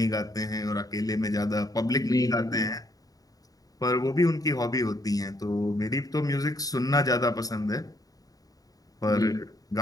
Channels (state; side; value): late; right; 0.18 ms